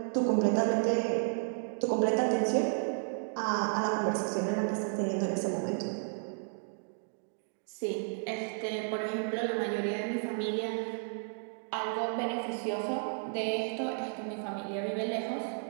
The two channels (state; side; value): silent; left; digital silence